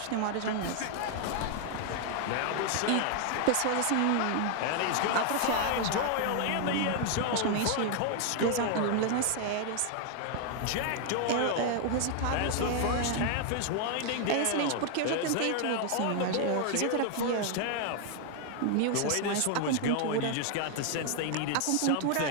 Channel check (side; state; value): both; different; correlation 0.00